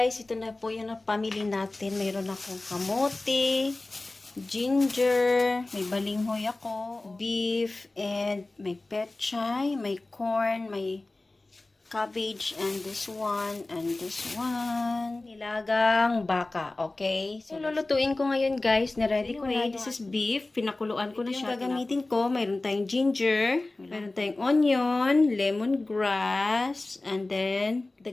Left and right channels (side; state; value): right; quieter; 3.0 dB